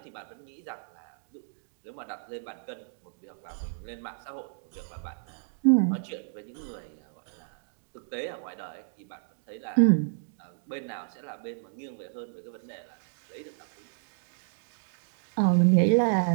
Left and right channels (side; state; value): left; silent; digital silence